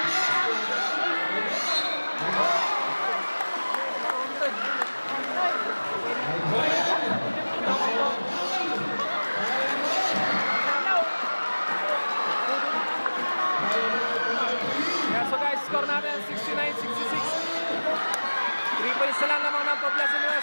So guys, score natin 69-66. 3 points na lang naman ng Poblacion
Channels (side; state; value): both; inverted; correlation -1.00